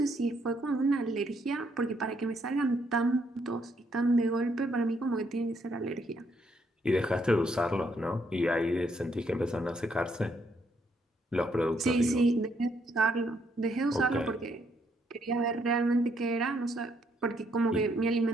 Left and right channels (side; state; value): both; normal; correlation 0.73